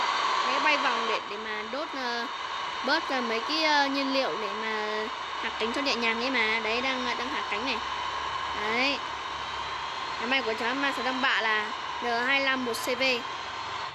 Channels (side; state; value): both; identical; correlation 1.00